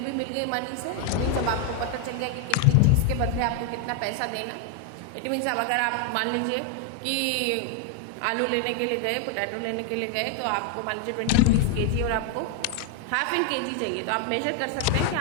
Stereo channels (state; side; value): different; both; correlation 0.00